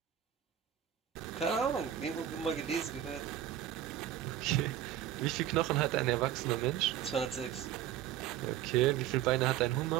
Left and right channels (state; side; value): quieter; left; 11.0 dB